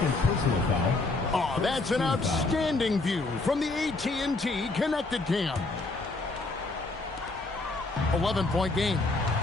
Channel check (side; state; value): right; quieter; 3.3 dB